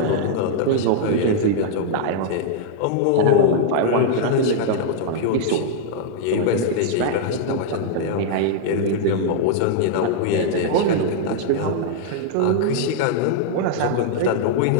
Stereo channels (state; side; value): different; both; correlation -0.01